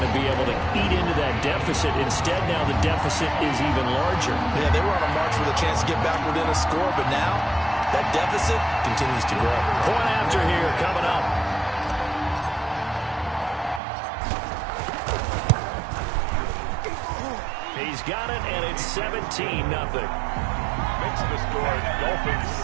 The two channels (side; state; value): left; drops out; at 13.8 s